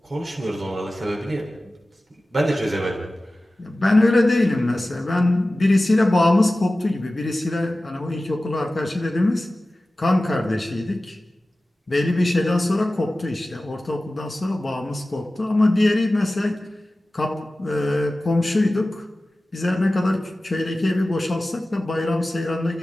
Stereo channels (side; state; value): both; normal; correlation 0.96